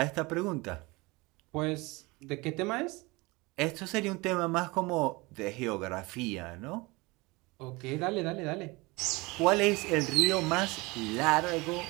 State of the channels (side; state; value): left; quieter; 24.1 dB